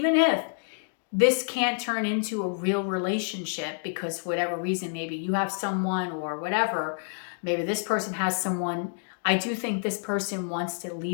if this can't turn into a real relationship because for whatever reason, maybe you have someone or whatever, maybe this person has someone, I do think this person wants to at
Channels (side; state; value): right; silent; digital silence